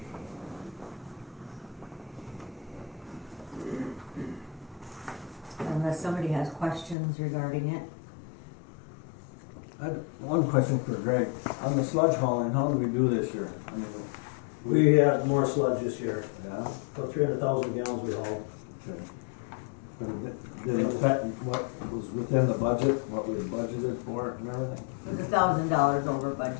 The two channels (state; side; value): drops out; right; at 7.0 s